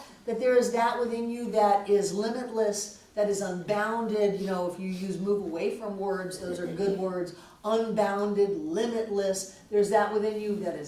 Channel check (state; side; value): identical; both; correlation 1.00